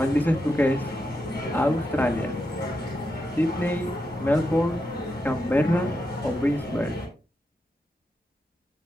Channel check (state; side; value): normal; both; correlation 0.86